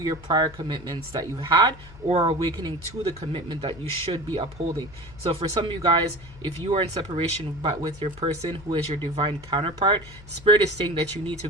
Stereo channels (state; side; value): noise; left; hum, 19 dB below the sound